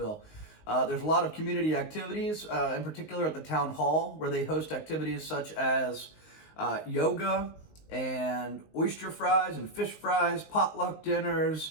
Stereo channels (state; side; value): late; right; 19 ms